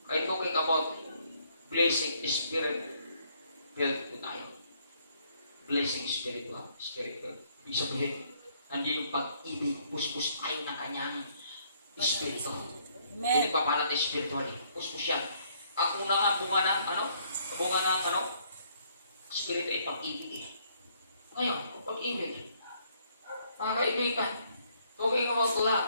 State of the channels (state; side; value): inverted; both; correlation -0.66